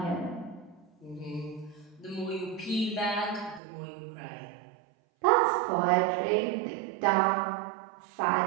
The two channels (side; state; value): left; drops out; at 3.6 s